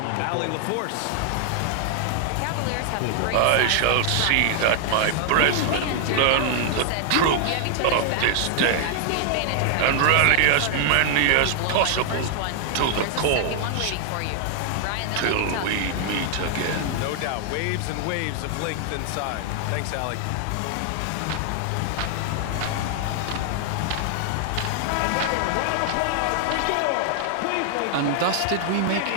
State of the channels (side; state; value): both; different; correlation 0.00